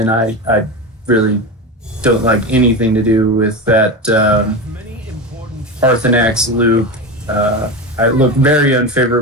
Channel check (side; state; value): both; normal; correlation 0.21